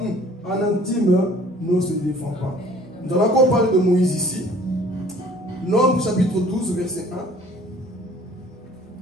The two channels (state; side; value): normal; both; correlation 0.53